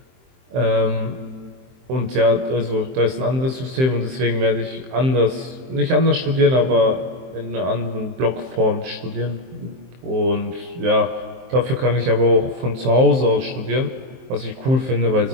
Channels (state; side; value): late; left; 23 ms